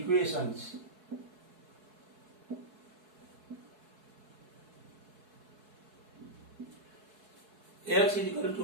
X is equal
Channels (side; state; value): left; late; 4.7 ms